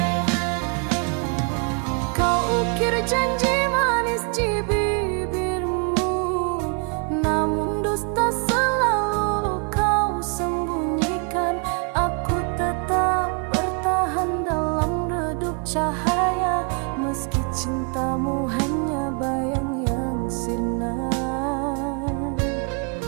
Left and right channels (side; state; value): left; quieter; 37.5 dB